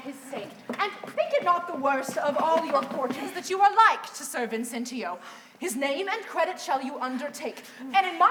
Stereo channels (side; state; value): both; identical; correlation 1.00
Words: sake. And think it not the worst of all your fortunes that you are like to Sir Vincentio. His name and credit shall you undertake, and in